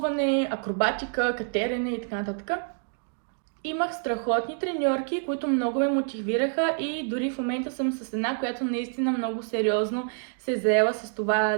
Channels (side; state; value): left; silent; 60 dB below the other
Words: акробатика, катерене и така нататък. Имах страхотни треньорки, които много ме мотивираха и дори в момента съм с една, която наистина много сериозно се е заела с това